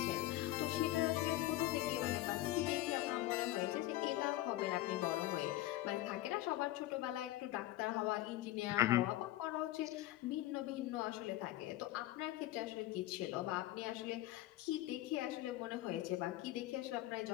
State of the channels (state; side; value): quieter; right; 15.4 dB